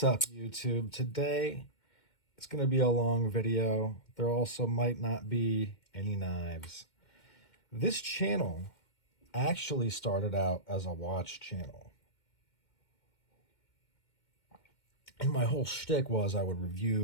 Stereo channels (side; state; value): right; late; 2.1 ms